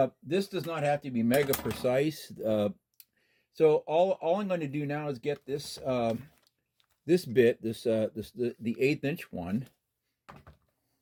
This does not have to be mega precise. So all I'm going to do now is get this this bit, the 1/8 inch one.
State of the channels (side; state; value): both; identical; correlation 1.00